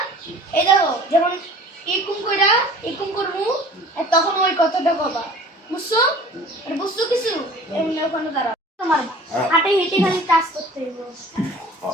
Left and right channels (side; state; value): both; normal; correlation 0.46